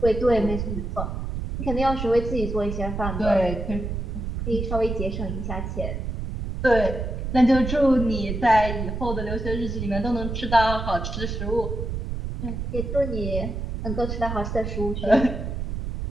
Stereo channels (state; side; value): noise; right; rumble, 4 dB below the sound